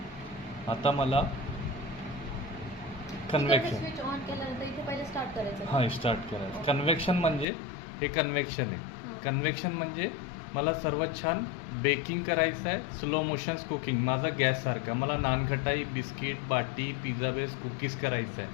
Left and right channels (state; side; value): drops out; right; at 7.5 s